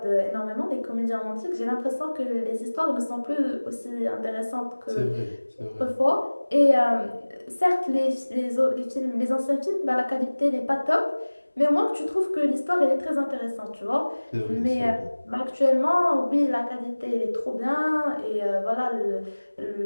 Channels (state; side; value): inverted; both; correlation -1.00